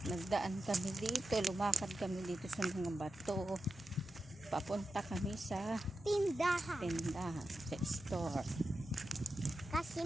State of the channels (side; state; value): both; normal; correlation 0.91